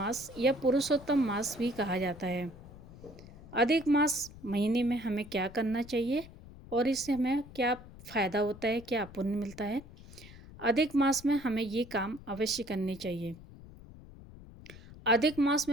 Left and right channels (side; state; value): left; noise; rumble, 18 dB below the sound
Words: या पुरुषोत्तम मास भी कहा जाता है। अधिक मास महीने में हमें क्या करना चाहिए और इससे हमें क्या फ़ायदा होता है, क्या पुण्य मिलता है? अधिक मास में हमें ये काम अवश्य करने चाहिए। अधिक मास